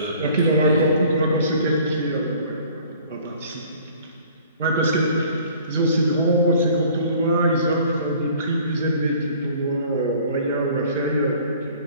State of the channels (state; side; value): inverted; both; correlation -0.52